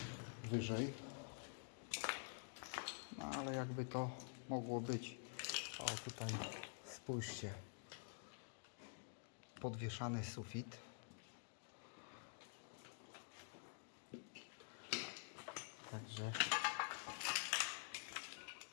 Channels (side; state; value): right; silent; digital silence